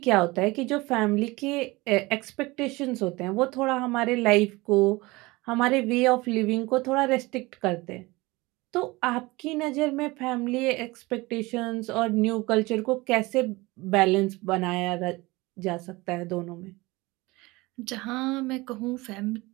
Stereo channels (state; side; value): quieter; left; 22.1 dB